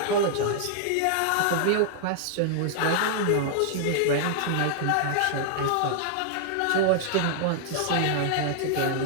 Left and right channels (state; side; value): different; both; correlation -0.01